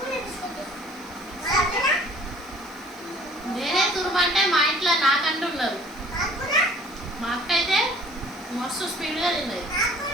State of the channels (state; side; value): noise; right; hiss, 26 dB below the sound